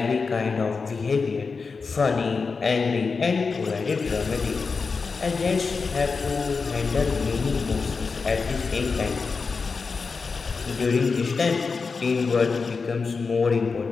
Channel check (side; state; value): right; quieter; 4.7 dB